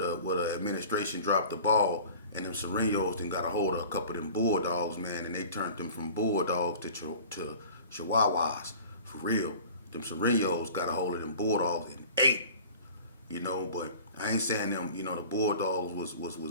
administration dropped the ball and them Serenos then got a hold of a couple of them bulldogs, man, and they turned them from bulldogs to chihuahuas for real. Them Serenos got a hold of them bulldogs and ate, but I ain't saying them, the bulldogs was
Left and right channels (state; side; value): inverted; both; correlation -0.43